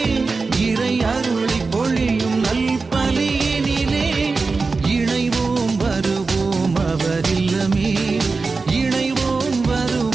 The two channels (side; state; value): left; quieter; 4.1 dB